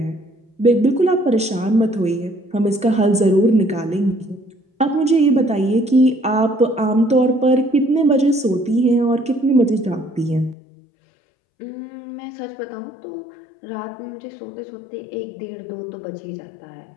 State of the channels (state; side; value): drops out; right; at 10.6 s